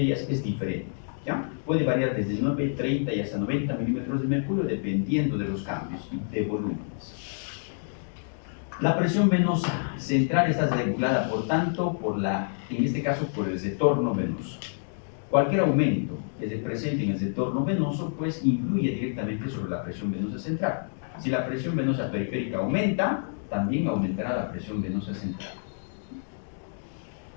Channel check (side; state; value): right; silent; digital silence